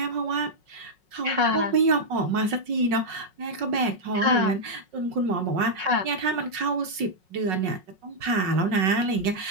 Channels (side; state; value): left; late; 5.4 ms